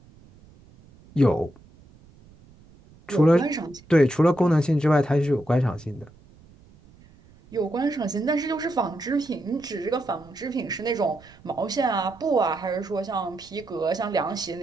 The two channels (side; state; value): right; noise; rumble, 25 dB below the sound